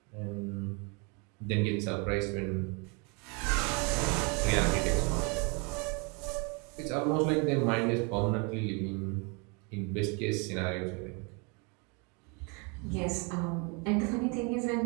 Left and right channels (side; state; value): left; quieter; 32.7 dB